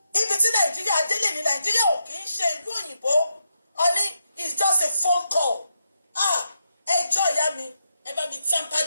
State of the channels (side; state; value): both; inverted; correlation -0.82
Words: ibi tí Nàìjíríà délé ní Nàìjíríà ò kì í ṣe ìlú òyìnbó. Ọọ̀ni it's just a phone call. ẹjọ́ ìyá mi, ẹ bá mi tamper